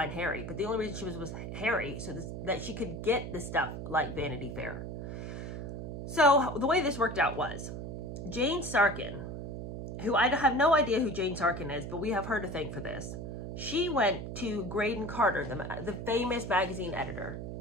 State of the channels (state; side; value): noise; right; hum, 7 dB below the sound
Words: Harry, but the only reason she was Harry so that she could get the stuff like Vanity Fair. So the way this worked out was, Jane Sarkin, who I have no idea who Jane Sarkin is, but we have her to thank for this. She went to Graydon Carter, the famous magazine editor